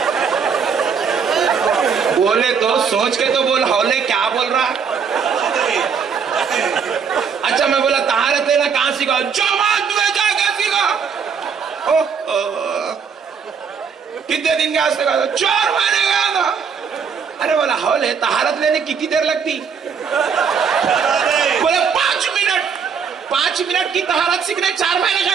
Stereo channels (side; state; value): left; quieter; 6.4 dB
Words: بولے تو سوچ کے تو بول، ہولے کیا بول رہا؟ اچھا میں بولا طہارت لینا کہاں سیکھا؟ جماعت میں جا کے سیکھا۔ کتنے دن گیا سیکھا؟ 4 مہینے گیا تھا۔ ارے بولا ہولے طہارت لینے کتنی دیر لگتی؟ بولے 5 منٹ۔ 5 منٹ کی طہارت سیکھنے 4 مہینے